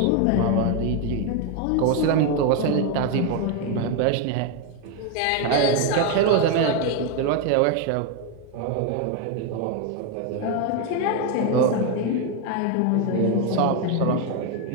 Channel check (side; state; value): both; different; correlation 0.02